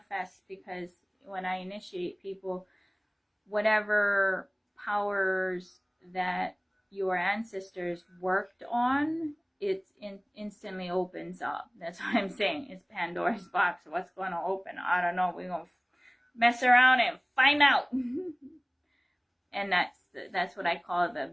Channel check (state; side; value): identical; both; correlation 1.00